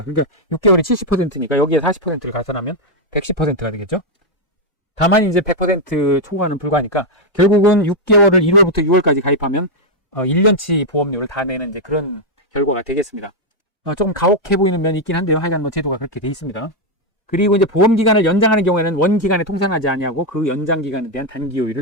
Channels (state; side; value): late; right; 1.5 ms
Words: 그러니까 6개월이 70%니까 여기에 40%를 가산하면 110%가 되겠죠. 다만 이제 100% 초과는 불가하니까 결국은 6개월을 1월부터 6월까지 가입하면 1년치 보험료를 다 내는 이제 그런 결과가 되겠습니다. 조금 가혹해 보이는 면이 있긴 한데요. 하여간 뭐 제도가 그렇게 돼 있습니다. 그리고 이제 보험 기간을 연장하는 경우에는 원 기간에 통상하지 아니하고 그 연장 기간에 대한 단기